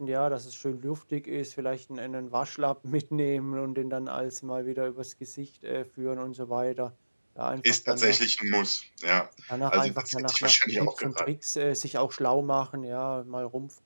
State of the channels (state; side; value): inverted; both; correlation -1.00